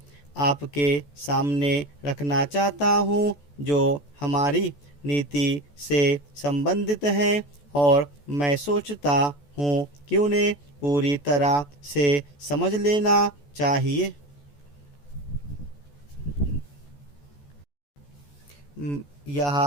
आपके सामने रखना चाहता हूँ जो हमारी नीति से संबंधित हैं, और मैं सोचता हूँ कि उन्हें पूरी तरह से समझ लेना चाहिए। यह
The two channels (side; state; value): right; late; 14 ms